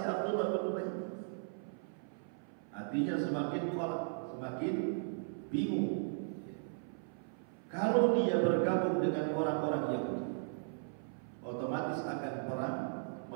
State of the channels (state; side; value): silent; left; 53 dB below the other